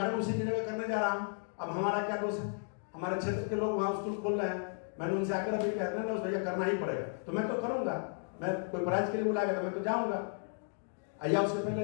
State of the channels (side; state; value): right; silent; 55 dB below the other